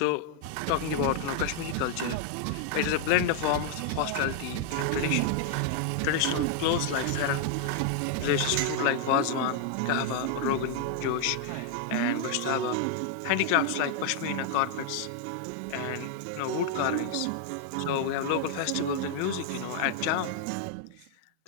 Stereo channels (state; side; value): different; both; correlation 0.00